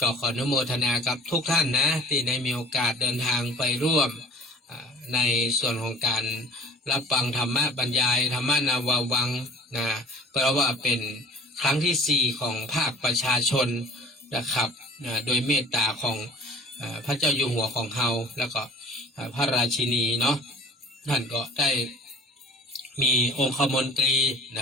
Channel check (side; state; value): both; normal; correlation 0.47